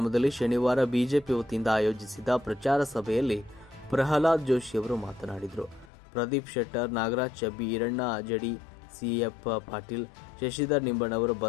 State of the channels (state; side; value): drops out; right; at 5.9 s